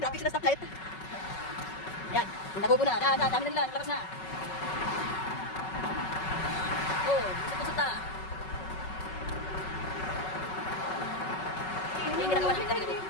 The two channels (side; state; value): right; late; 5.3 ms